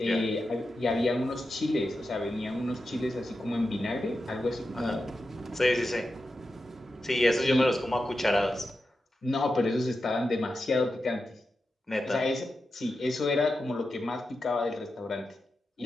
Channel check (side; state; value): both; normal; correlation 0.90